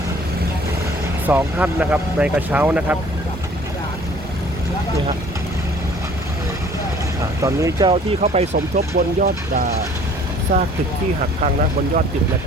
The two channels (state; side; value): normal; both; correlation 0.53